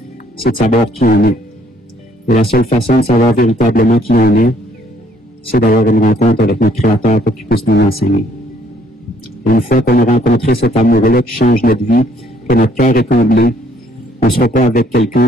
c'est de savoir qui on est. Et la seule façon de savoir véritablement qui on est, c'est d'avoir une rencontre avec notre Créateur pour qu'il puisse nous enseigner. Et une fois qu'on a rencontré cet amour-là qui change notre vie, que notre cœur est comblé, on ne sera pas avec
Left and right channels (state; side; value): normal; both; correlation 0.65